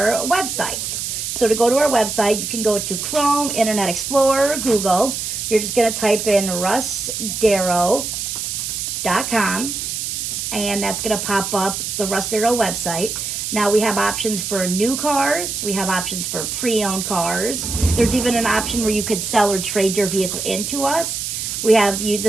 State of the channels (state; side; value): noise; right; hiss, 4 dB below the sound